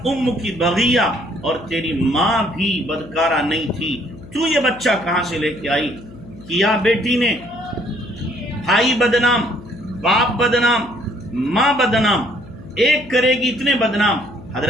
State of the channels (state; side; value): noise; left; hum, 19 dB below the sound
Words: ام کی بغیہ، اور تیری ماں بھی بدکارہ نہیں تھی، تو یہ بچہ کہاں سے لے کے آئی؟ کیا بیٹی نے، بھائی بدنام، باپ بدنام، ماں بدنام، ایک کرے گی اتنے بدنام۔